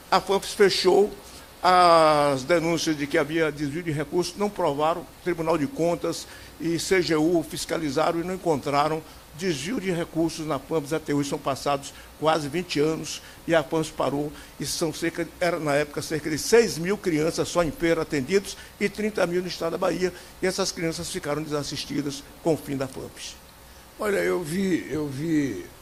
a FAMPES fechou as denúncias de que havia desvio de recursos, não provaram, Tribunal de Contas e CGU fiscalizaram e não encontraram desvio de recursos na FAMPES até hoje. São passados quase 20 anos e a FAMPES parou. E são na época, cerca de 6 mil crianças só em feira atendidos e 30 mil no estado da Bahia. E essas crianças ficaram desassistidas com o fim da FAMPES. Olha, eu vi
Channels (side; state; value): both; identical; correlation 1.00